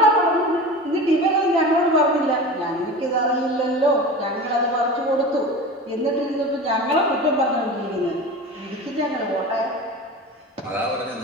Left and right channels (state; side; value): normal; both; correlation 0.32